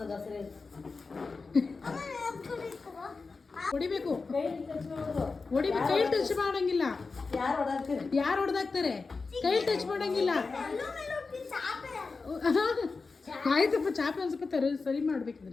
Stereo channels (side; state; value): right; quieter; 4.3 dB